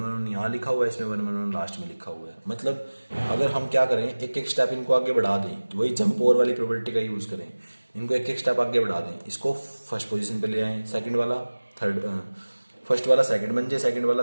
1 यहाँ लिखा हुआ है, इसमें 1 1 1 लास्ट में लिखा हुआ है। मतलब अगर हम क्या करें, एक एक स्टेप इनको आगे बढ़ा दें, तो वही जंप ओवर वाली प्रोबेबिलिटी का यूज करें, इनको एक एक स्टेप आगे बढ़ा दें, इसको फर्स्ट पोजीशन पे ले आए, सेकंड वाला थर्ड, फर्स्ट वाला सेकंड बन जाए, सेकंड वाला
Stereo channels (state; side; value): inverted; both; correlation -1.00